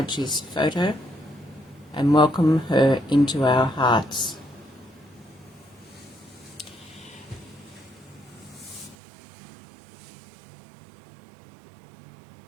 photo and welcome her into our hearts.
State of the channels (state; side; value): drops out; left; at 9.0 s